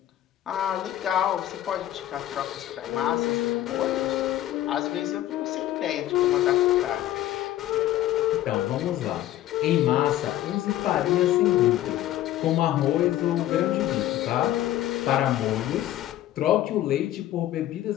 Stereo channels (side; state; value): right; quieter; 13.5 dB